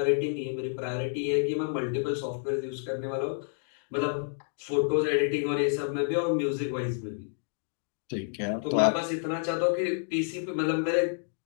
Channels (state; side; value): silent; right; digital silence